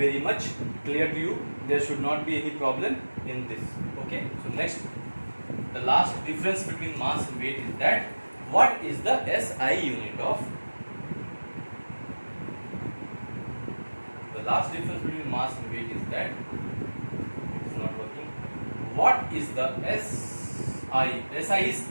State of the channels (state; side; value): inverted; both; correlation -1.00